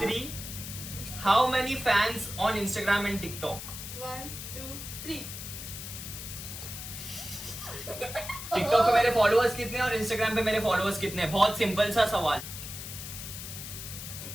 how many fans on Instagram and TikTok? 1 2 3। TikTok पे मेरे फॉलोअर्स कितने और इंस्टाग्राम पे मेरे फॉलोअर्स कितने? बहुत सिंपल सा सवाल।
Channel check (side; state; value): left; noise; hiss, 9 dB below the sound